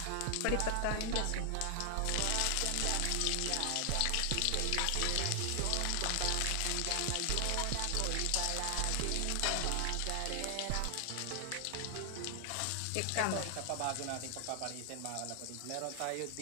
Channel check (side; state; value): both; different; correlation 0.00